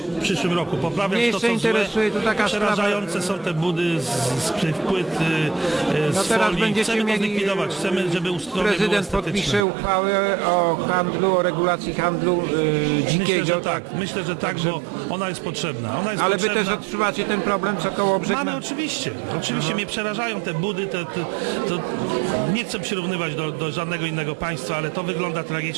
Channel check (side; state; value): left; drops out; at 9.7 s